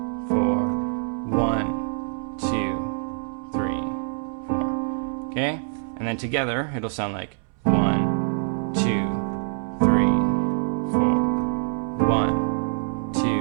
4, 1, 2, 3, 4. Okay? And then together it'll sound like 1, 2, 3, 4. 1, 2,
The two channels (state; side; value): silent; left; 62 dB below the other